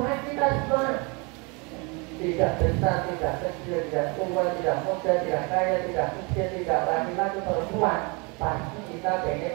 kita semua. Tidak besar, tidak kecil, tidak tua, tidak muda, tidak kaya, tidak miskin, tidak laki-laki, perempuan. Pasti kita pengen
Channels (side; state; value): left; quieter; 30.3 dB